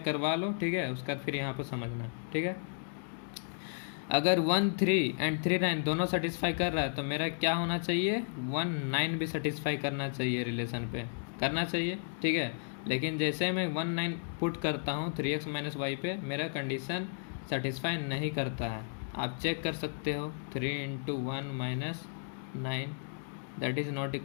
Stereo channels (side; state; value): right; silent; digital silence